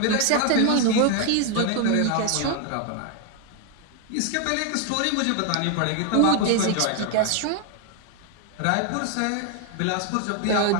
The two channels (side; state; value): both; different; correlation 0.00